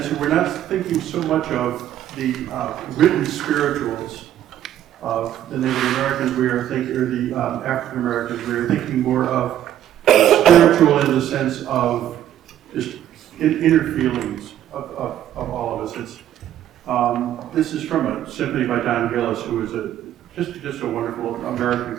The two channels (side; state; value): left; quieter; 11.4 dB